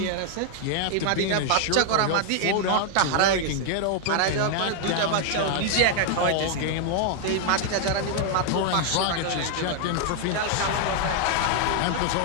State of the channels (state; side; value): different; both; correlation 0.00